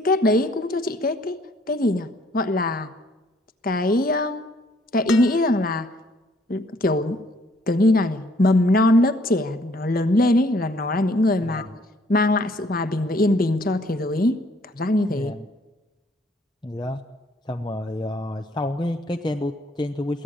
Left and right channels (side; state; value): both; normal; correlation 0.63